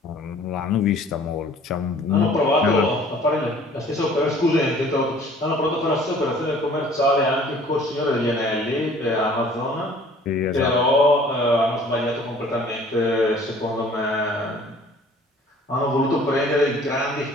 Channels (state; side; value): normal; both; correlation 0.52